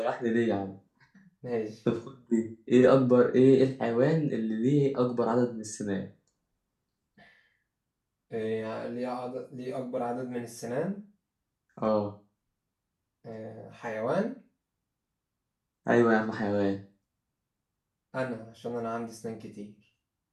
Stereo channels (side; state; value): both; identical; correlation 1.00